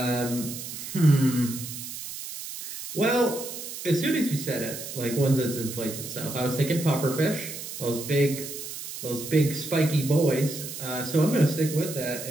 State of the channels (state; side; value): noise; right; hiss, 9 dB below the sound